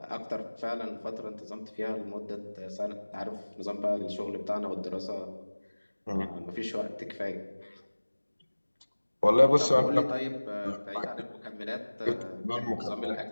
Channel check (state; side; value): inverted; both; correlation -1.00